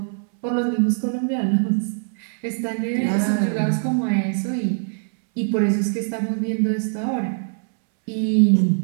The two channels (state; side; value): silent; left; 64 dB below the other